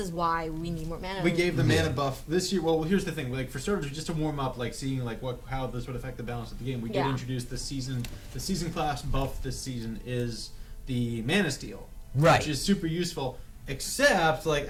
why we need more mana. We gave the mana buff this year. Well, here's the thing: like for starters, just to warm up, like seeing like how this would affect the balance of the game. We did introduce the season class buff this season is the mana steal, Right. Which is super useful. Except like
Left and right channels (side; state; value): both; identical; correlation 1.00